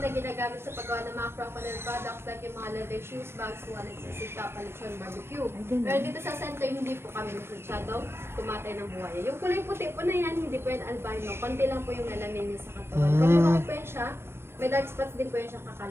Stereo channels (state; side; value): late; left; 0.12 ms